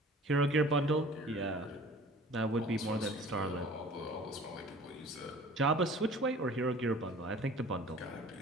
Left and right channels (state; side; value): normal; both; correlation 0.47